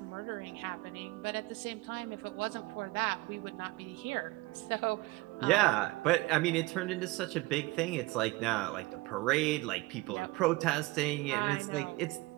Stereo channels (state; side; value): quieter; left; 21.5 dB